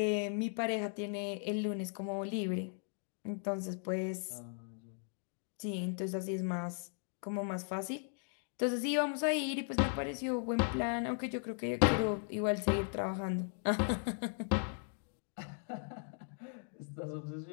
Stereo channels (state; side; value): silent; right; 53 dB below the other